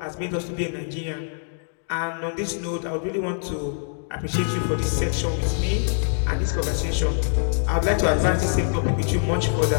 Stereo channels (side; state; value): right; silent; digital silence